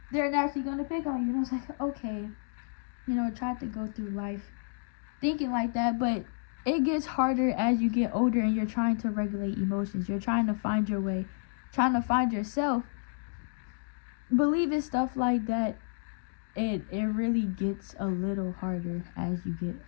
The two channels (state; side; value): silent; right; digital silence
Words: they're naturally gonna pick on you. And I was like, okay, tried to go through life thinking like that, but it gets harder as you get older and you're trying to regulate emotions. You're trying to find your way, trying to find yourself. Believing stuff like that, it really gets a little harder as you get